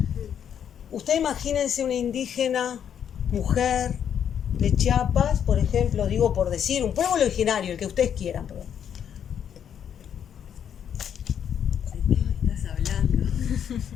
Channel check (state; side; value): quieter; right; 8.7 dB